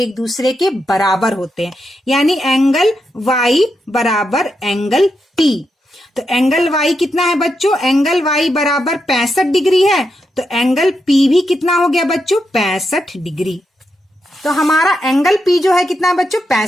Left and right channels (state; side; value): normal; both; correlation 0.84